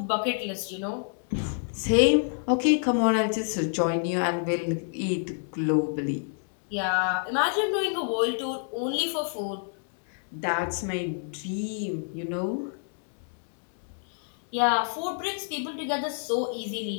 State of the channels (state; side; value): silent; right; 59 dB below the other